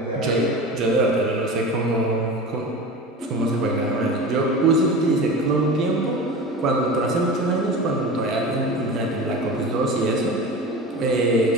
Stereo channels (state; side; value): normal; both; correlation 0.31